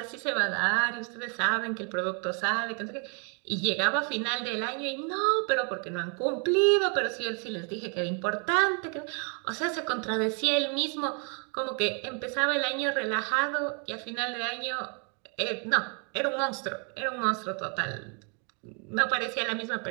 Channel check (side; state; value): left; quieter; 38.4 dB